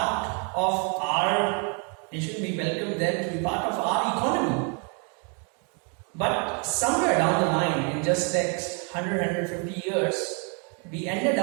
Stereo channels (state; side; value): quieter; left; 37.8 dB